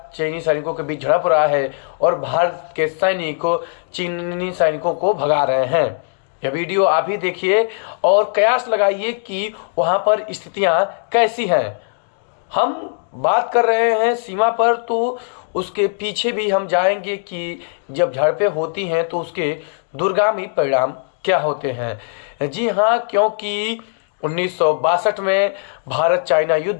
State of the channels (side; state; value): right; silent; 66 dB below the other